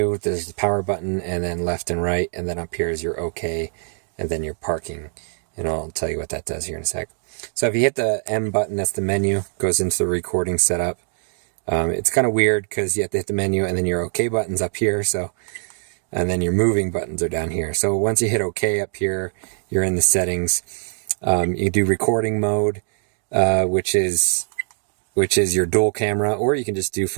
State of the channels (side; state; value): left; silent; digital silence